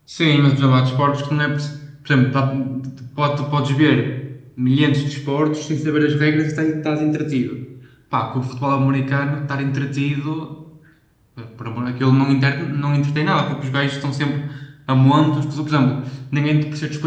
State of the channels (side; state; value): both; identical; correlation 1.00